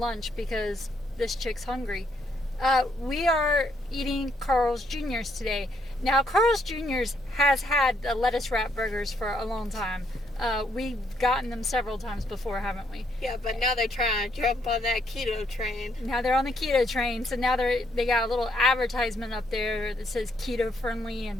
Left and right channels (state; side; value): normal; both; correlation 0.73